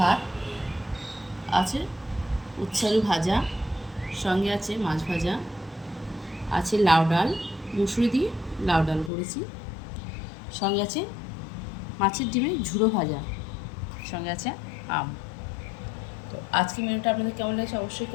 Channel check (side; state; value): right; drops out; at 9.1 s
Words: আছে উচ্ছে আলু ভাজা, সঙ্গে আছে মাছ ভাজা, আছে লাউ ডাল, মুসুরি দিয়ে লাউ ডাল করেছি, সঙ্গে আছে মাছের ডিমের ঝুড়ো ভাজা, সঙ্গে আছে আম। তো আজকে মেনুটা আপনাদের কেমন লাগছে অবশ্যই